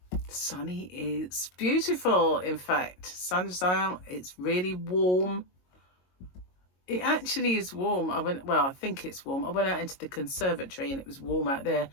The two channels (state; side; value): late; right; 22 ms